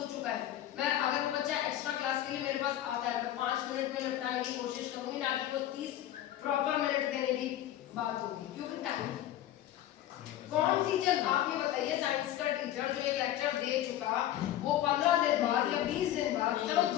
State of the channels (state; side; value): quieter; right; 12.7 dB